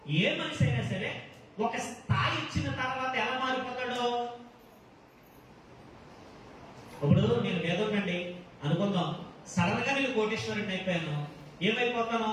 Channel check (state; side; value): identical; both; correlation 1.00